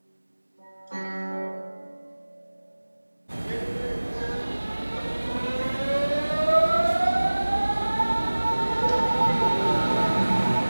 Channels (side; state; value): both; inverted; correlation -1.00